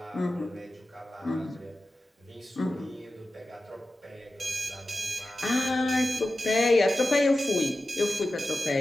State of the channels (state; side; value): normal; both; correlation 0.94